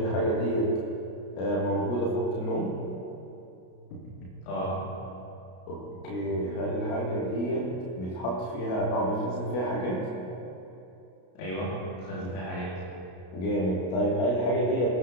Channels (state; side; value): late; right; 33 ms